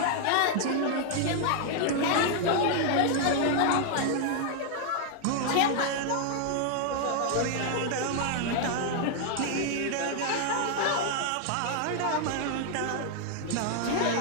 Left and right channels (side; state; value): both; different; correlation 0.00